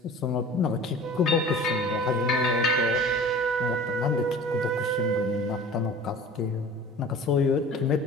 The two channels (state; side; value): normal; both; correlation 0.41